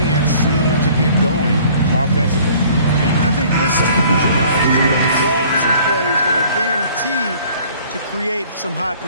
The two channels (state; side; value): inverted; both; correlation -0.53